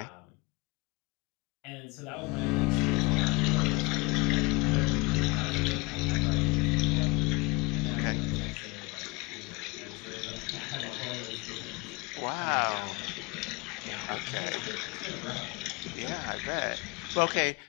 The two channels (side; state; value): right; quieter; 25.9 dB